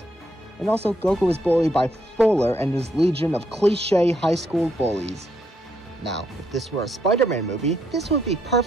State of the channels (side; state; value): both; normal; correlation 0.75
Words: And also, Goku is bullied by Fuller and his legion of cliché high school bullies. Now, if this were a Spider-Man movie, this would be